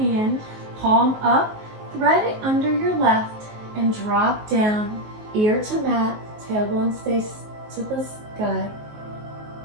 palm up, thread it under your left, and drop down, ear to mat, tailbone stays to the sky.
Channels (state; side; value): late; left; 19 ms